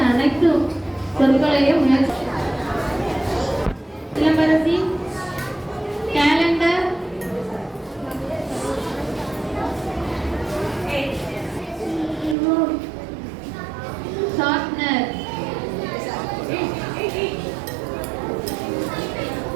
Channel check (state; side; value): drops out; left; at 12.4 s